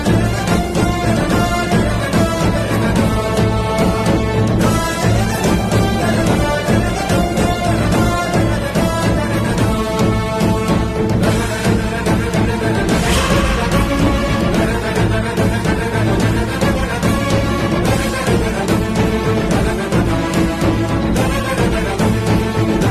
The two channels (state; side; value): identical; both; correlation 1.00